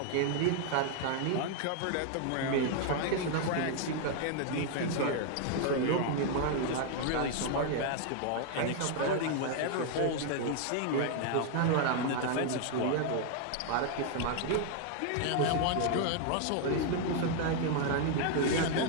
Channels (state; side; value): different; both; correlation 0.00